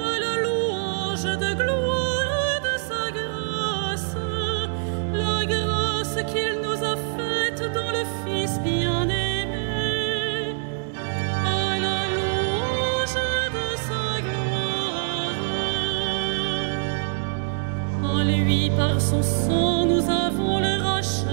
la louange de gloire de sa grâce, la grâce qu'il nous dans le Fils bien-aimé. À la louange de sa gloire. En lui, par son sang, nous avons le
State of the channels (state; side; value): silent; left; 62 dB below the other